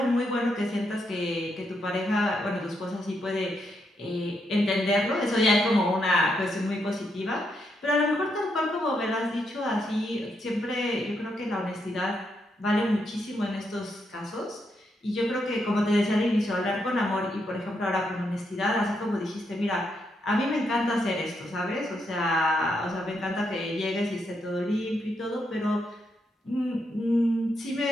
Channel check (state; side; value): normal; both; correlation 0.80